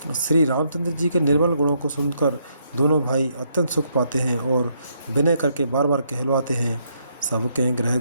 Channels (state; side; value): inverted; both; correlation -0.74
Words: श्री रामचंद्र जी के निर्मल गुणों को सुनकर दोनों भाई अत्यंत सुख पाते हैं और विनय करके बार बार कहलवाते हैं। सबके ग्रह